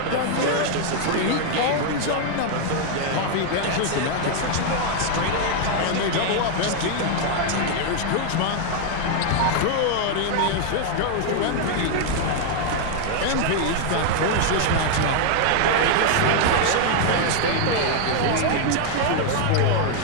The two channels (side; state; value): both; different; correlation 0.00